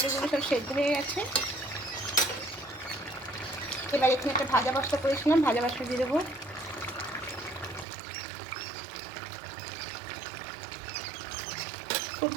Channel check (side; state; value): left; drops out; at 7.9 s